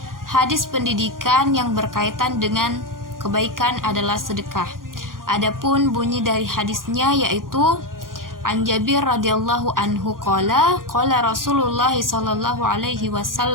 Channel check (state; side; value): late; left; 0.91 ms